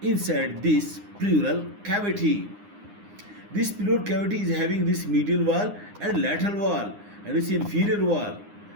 inside this pleural cavity. This pleural cavity is having this medial wall and lateral wall, and this inferior wall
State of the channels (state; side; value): late; left; 9.8 ms